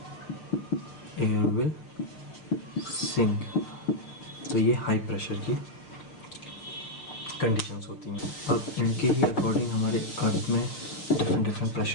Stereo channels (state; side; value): late; right; 6.7 ms